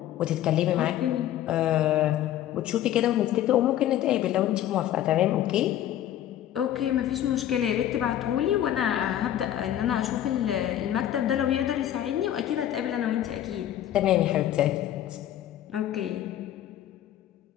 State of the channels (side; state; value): right; quieter; 11.9 dB